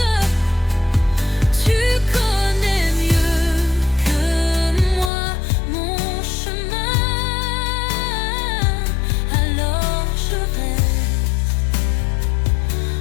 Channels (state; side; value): drops out; right; at 5.1 s